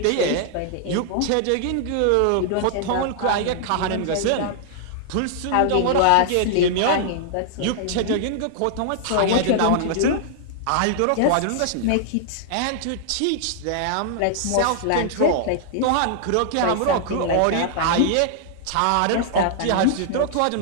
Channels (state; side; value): different; both; correlation -0.01